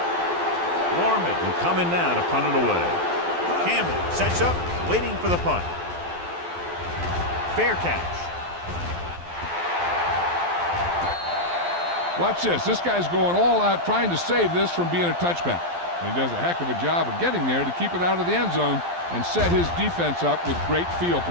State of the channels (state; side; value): late; left; 12 ms